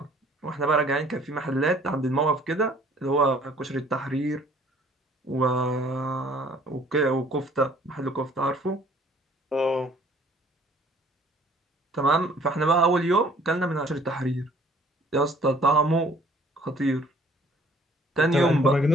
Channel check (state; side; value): normal; both; correlation 0.57